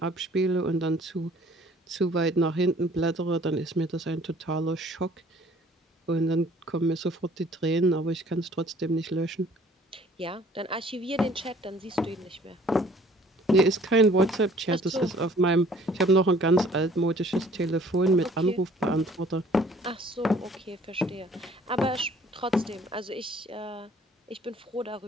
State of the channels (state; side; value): normal; both; correlation 0.55